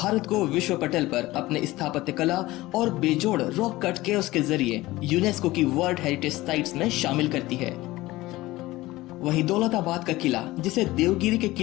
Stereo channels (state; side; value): quieter; right; 18.5 dB